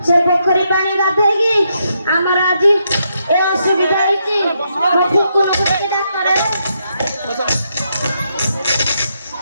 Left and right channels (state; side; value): inverted; both; correlation -0.79